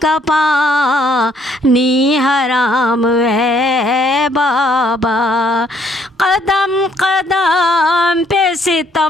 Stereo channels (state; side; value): normal; both; correlation 0.67